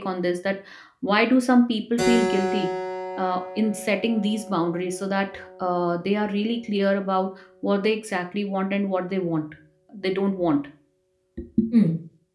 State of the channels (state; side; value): identical; both; correlation 1.00